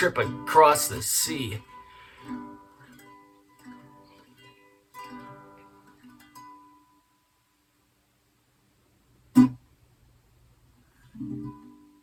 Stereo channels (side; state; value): both; identical; correlation 1.00